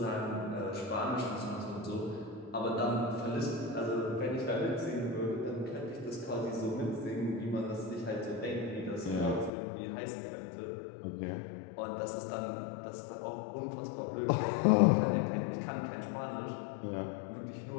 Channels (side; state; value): right; drops out; at 9.5 s